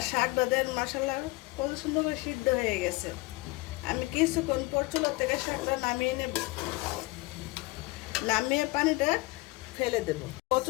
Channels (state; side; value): quieter; right; 22.8 dB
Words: শাকটা দেন মশলা কত সুন্দর করে সিদ্ধ হয়ে গেছে। আমি কিছুক্ষণ পর চুলা থেকে শাকটা নামিয়ে নেব, নামিয়ে পানিটা ফেলে দেব।